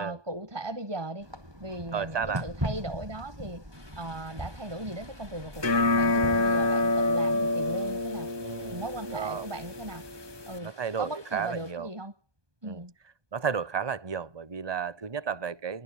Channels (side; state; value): left; late; 1.2 ms